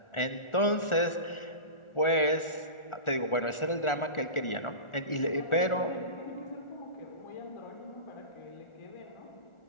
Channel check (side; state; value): right; late; 1.4 ms